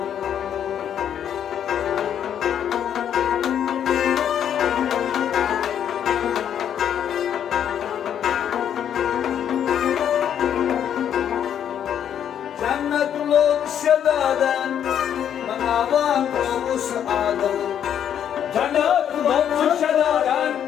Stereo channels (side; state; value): right; quieter; 9.3 dB